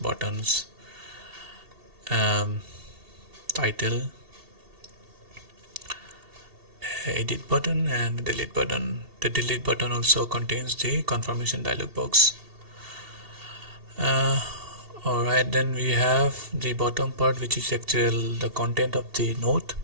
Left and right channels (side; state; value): left; late; 2.7 ms